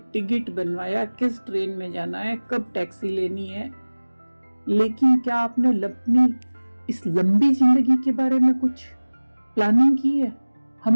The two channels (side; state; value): both; inverted; correlation -1.00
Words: टिकट बनवाया, किस ट्रेन में जाना है, कब टैक्सी लेनी है, लेकिन क्या आपने अपनी इस लंबी जिंदगी के बारे में कुछ प्लानिंग की है?